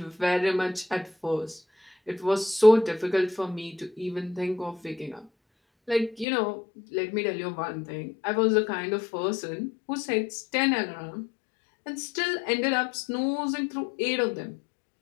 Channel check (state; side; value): drops out; right; at 6.2 s